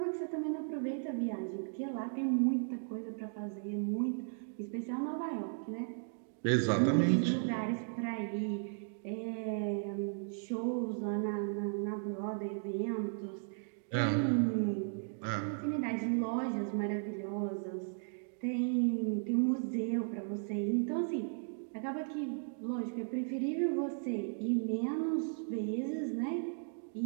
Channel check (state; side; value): silent; left; digital silence